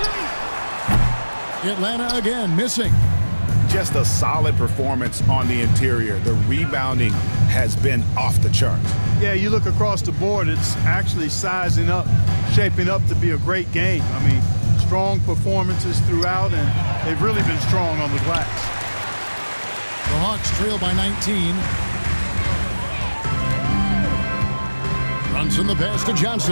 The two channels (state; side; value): inverted; both; correlation -1.00